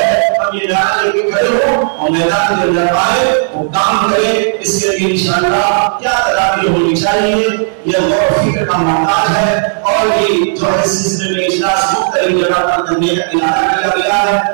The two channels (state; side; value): silent; left; digital silence